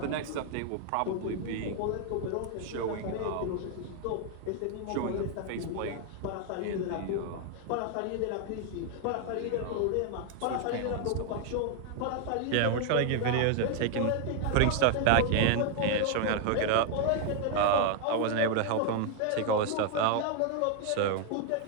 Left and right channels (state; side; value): different; both; correlation 0.00